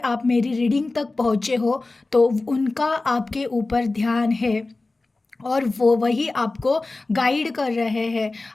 मेरी रीडिंग तक पहुँचे हो तो उनका आपके ऊपर ध्यान है और वो वही आपको गाइड कर रहे हैं।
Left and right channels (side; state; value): right; quieter; 3.3 dB